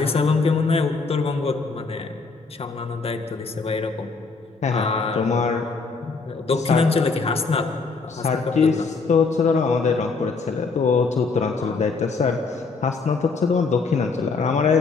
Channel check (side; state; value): right; quieter; 4.4 dB